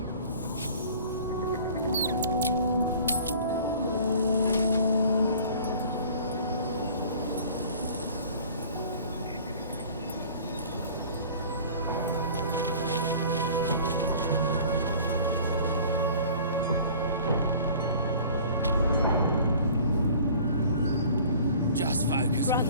Just focus on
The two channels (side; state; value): both; inverted; correlation -0.47